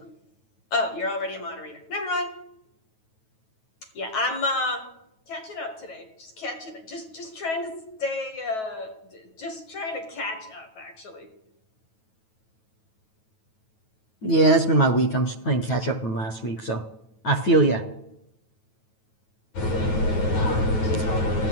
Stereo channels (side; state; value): right; late; 9.2 ms